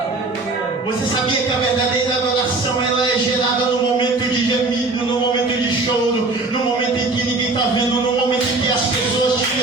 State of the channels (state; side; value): quieter; left; 3.3 dB